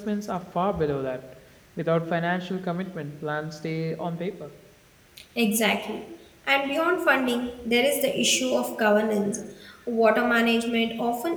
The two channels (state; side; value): identical; both; correlation 1.00